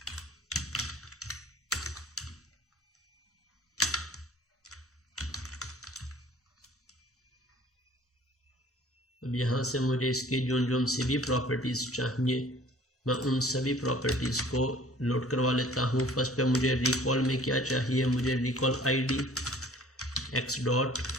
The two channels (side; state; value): both; normal; correlation 0.51